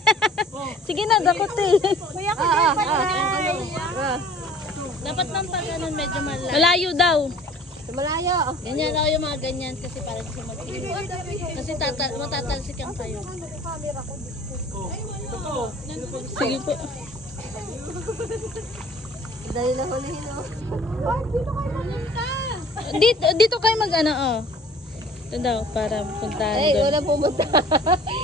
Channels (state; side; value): normal; both; correlation 0.49